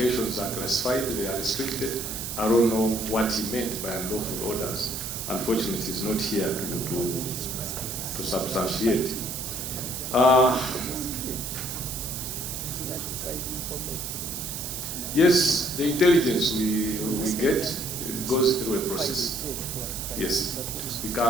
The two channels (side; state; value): right; noise; hiss, 5 dB below the sound